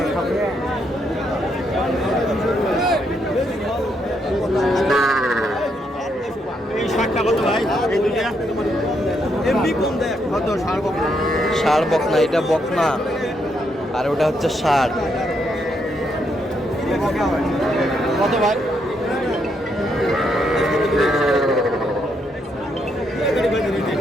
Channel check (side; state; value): both; normal; correlation 0.77